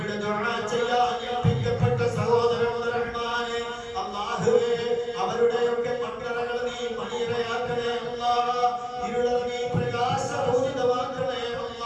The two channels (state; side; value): identical; both; correlation 1.00